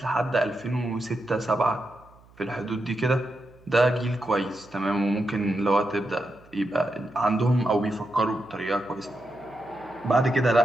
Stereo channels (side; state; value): right; noise; hum, 27 dB below the sound